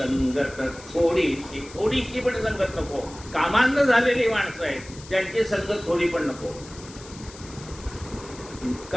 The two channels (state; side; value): noise; left; hiss, 18 dB below the sound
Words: थोडीशी, थोडीशी पण संगत नको. कामांध झालेली माणसं आहेत, त्यांची संगत थोडी पण नको.